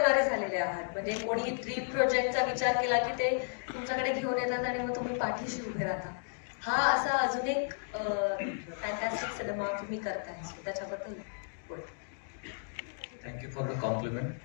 झालेले आहात. म्हणजे कोणी ड्रीम प्रोजेक्टचा विचार केला की ते तुमच्याकडे घेऊन येतात आणि मग तुम्ही पाठीशी उभे राहता. हा असा अजून एक फॅन्टॅस्टिक सिनेमा तुम्ही करताय, त्याच्याबद्दल बोल. Thank you for the compliment.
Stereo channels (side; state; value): right; silent; digital silence